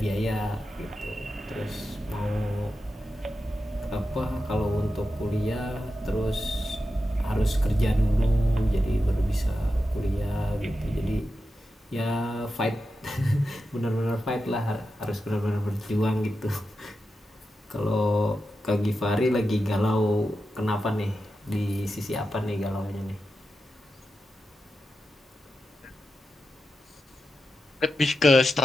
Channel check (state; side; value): normal; both; correlation 0.90